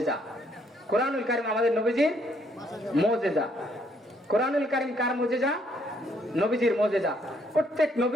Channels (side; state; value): both; normal; correlation 0.69